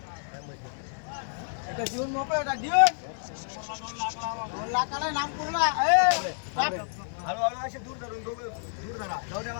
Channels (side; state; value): right; silent; 58 dB below the other